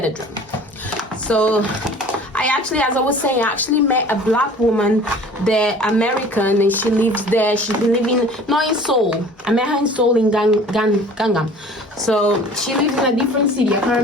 it. So I actually, as I was saying, I actually met a black woman there, American, and she lives there. She's been living, not in Seoul. I met her in Seoul in Gangnam. So she lives in a different city. I can't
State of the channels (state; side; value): normal; both; correlation 0.46